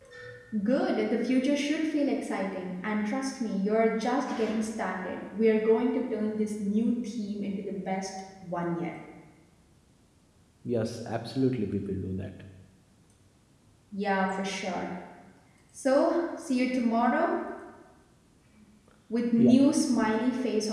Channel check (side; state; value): both; identical; correlation 1.00